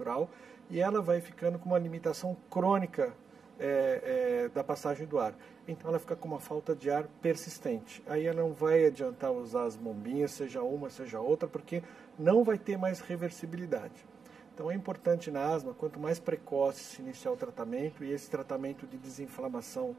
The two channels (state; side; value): quieter; left; 5.7 dB